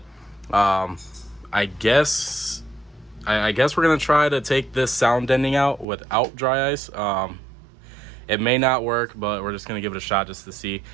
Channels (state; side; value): drops out; left; at 5.9 s